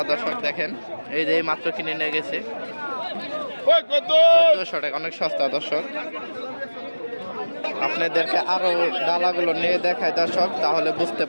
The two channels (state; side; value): inverted; both; correlation -1.00